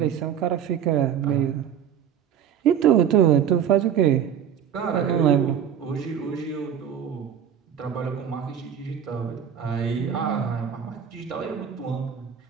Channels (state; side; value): quieter; left; 8.7 dB